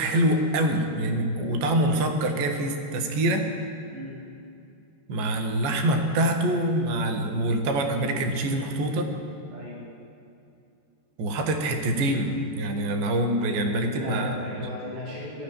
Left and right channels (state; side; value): late; left; 14 ms